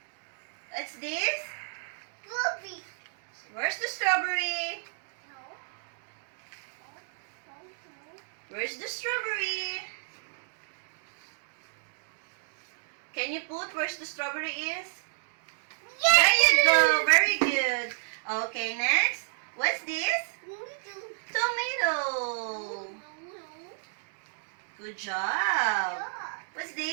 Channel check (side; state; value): left; silent; digital silence